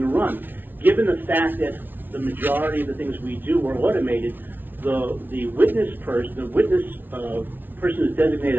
run. Given the fact that the majority of the things we do are automated, the witness person who's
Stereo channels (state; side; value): late; left; 0.092 ms